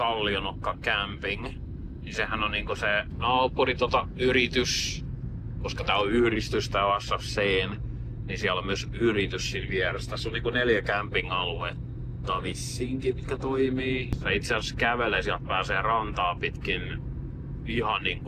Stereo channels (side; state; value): both; identical; correlation 1.00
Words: Camping. Niin sehän on niinku se naapuri yritys, koska tää on yhdistys tää SFC:n, niin siellä on myös yritys siinä vieressä. Tässä on niinku 4 camping-aluetta vissiinkin, mitkä toimii. Se itse asiassa kävelee, sieltä pääsee rantaa pitkin ihan